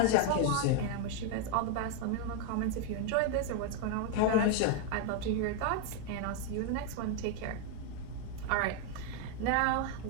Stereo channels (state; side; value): different; both; correlation 0.01